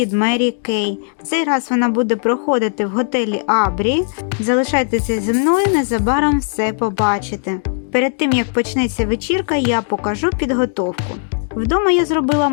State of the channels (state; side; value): silent; right; digital silence